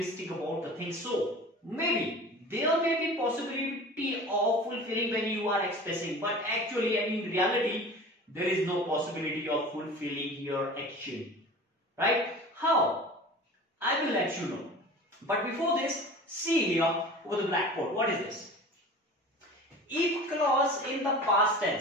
about the thing. So maybe there may be possibility of fulfilling when you are expressing, but actually and in reality there is no possibility of fulfilling your action. Right? How? I will let you know. But before this, see here over the blackboard. What is this? If clause in the past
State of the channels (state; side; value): normal; both; correlation 0.38